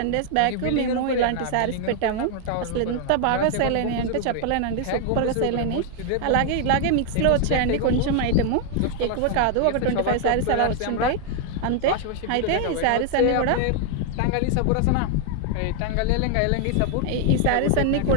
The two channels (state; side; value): different; both; correlation 0.00